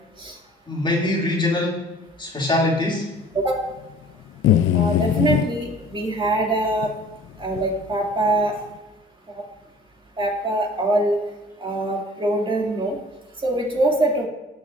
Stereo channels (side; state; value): both; normal; correlation 0.49